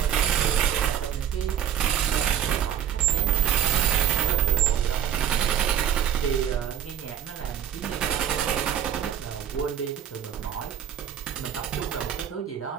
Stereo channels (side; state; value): left; quieter; 9.5 dB